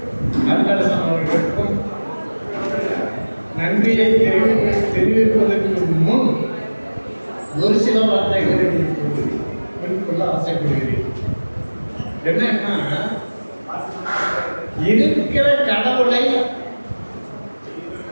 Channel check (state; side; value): inverted; both; correlation -1.00